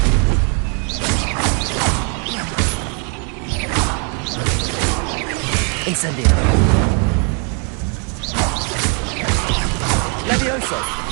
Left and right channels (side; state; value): left; quieter; 39.0 dB